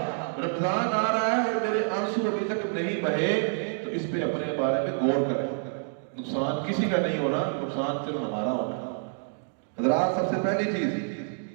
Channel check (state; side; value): silent; left; digital silence